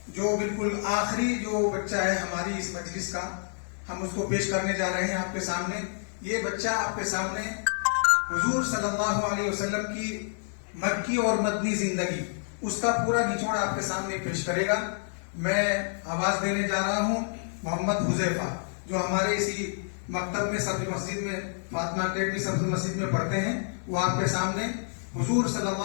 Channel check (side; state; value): right; silent; 59 dB below the other